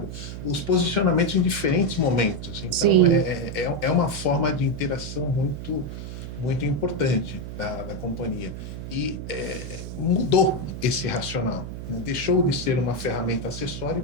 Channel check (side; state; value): right; noise; hum, 8 dB below the sound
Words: os posicionamentos em diferentes momentos. Então, é uma forma de interação muito, muito importante da companhia. E mudou esse racional. Deixou de ser uma ferramenta acessória e